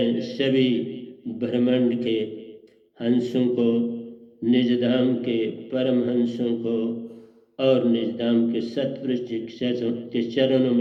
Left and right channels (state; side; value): identical; both; correlation 1.00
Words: सभी ब्रह्मांड के हंसों को, निजधाम के परम हंसों को और निजधाम के सतपुरुष के चरणों